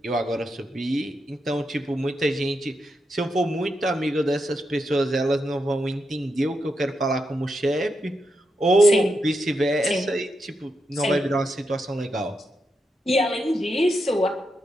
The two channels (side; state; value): both; normal; correlation 0.85